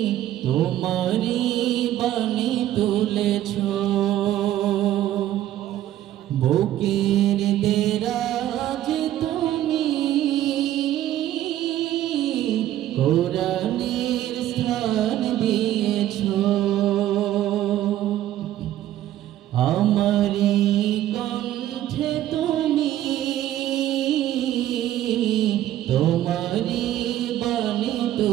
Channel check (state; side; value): quieter; left; 13.0 dB